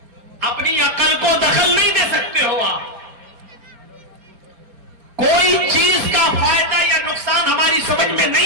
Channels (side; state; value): left; late; 4.2 ms